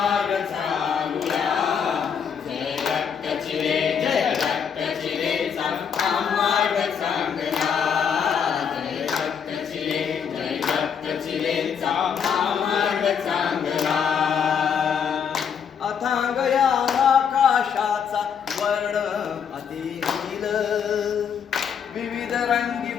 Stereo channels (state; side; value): quieter; right; 7.3 dB